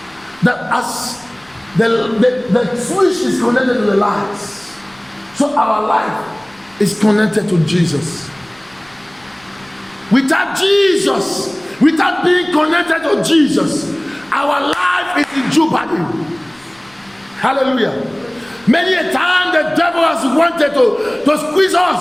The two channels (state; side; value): noise; left; rumble, 30 dB below the sound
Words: that as the switch is connected to the lights, so our life is connected to Jesus. Without Jesus, without being connected to Jesus, our life is in jeopardy. Hallelujah. Many a time the devil has wanted to squeeze